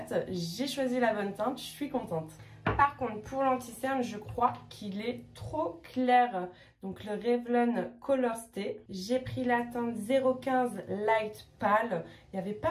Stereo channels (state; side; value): identical; both; correlation 1.00